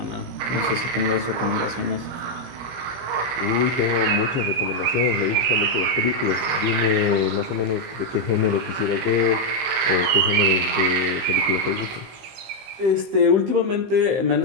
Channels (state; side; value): late; left; 15 ms